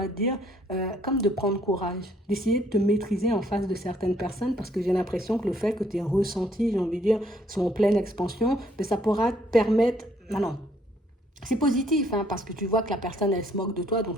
te dire, comme de prendre courage, d'essayer de te maîtriser en face de certaines personnes, parce que j'ai l'impression que le fait que tes ressentis, j'ai envie de dire, sont en pleine expansion, mais ça pourra te permettre... Non, c'est positif, hein, parce que tu vois que la personne, elle se moque de toi, donc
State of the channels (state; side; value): normal; both; correlation 0.66